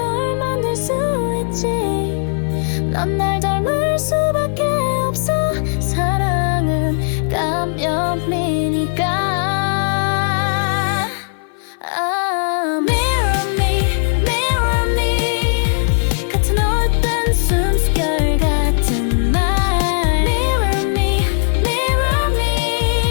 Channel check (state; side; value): silent; right; 57 dB below the other